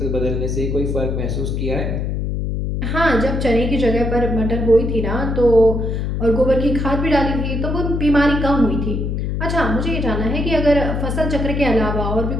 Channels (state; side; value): noise; left; hum, 1 dB below the sound